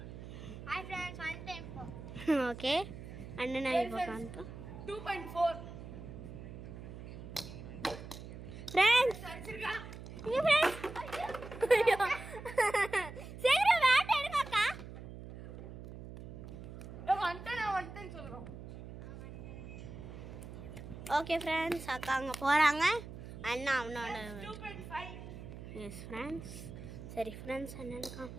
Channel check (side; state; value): right; noise; hum, 12 dB below the sound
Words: hi friends, one time okay அண்ணன் இப்போ காண்போம். 2.4 ஃப்ரெண்ட்ஸ் அடிச்சிருக்கா. இங்க ஃப்ரெண்ட்ஸ், சீக்கிரம் பேட் எடுங்கக்கா. வந்துட்டேன்னு சொல்றோம். ஓகே ஃப்ரெண்ட்ஸ், அக்கா அங்கே போகிறாங்க. அண்ணா அவனோட 2.5. S friends. சரி ஃப்ரெண்ட்ஸ், அண்ணனுக்கா